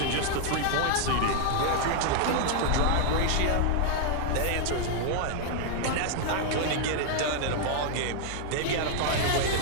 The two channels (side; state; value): both; different; correlation 0.00